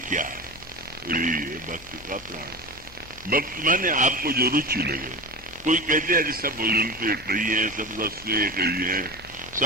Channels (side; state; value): left; noise; hum, 21 dB below the sound